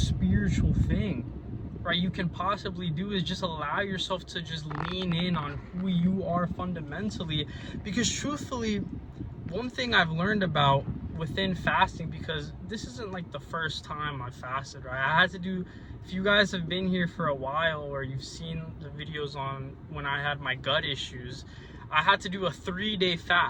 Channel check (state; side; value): identical; both; correlation 1.00